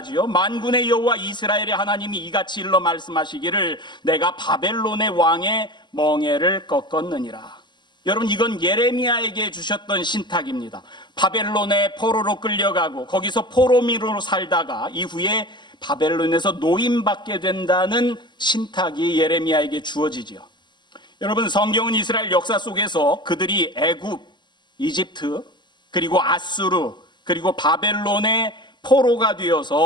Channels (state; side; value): late; right; 0.22 ms